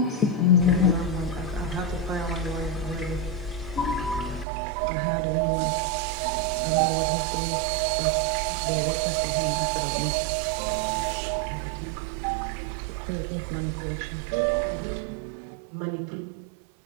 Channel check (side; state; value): left; drops out; at 4.5 s